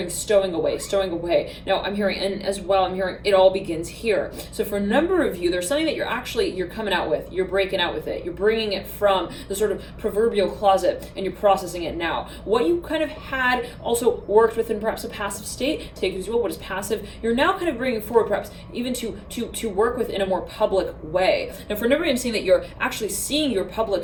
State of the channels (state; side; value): identical; both; correlation 1.00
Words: stowing away. Now I'm hearing, and as well, I'm hearing it all begins here. So for a number of you, there's something that you're coming out with. You're breaking out with it. You're bringing it from the sort of proverbial closet and you're processing it now. What you kind of had also worked with in perhaps a passive state, take it as well, what is passive, you're now kind of bringing forward perhaps even to work with in a more public way. Now for a number of you, I'm seeing that you're actually seeing your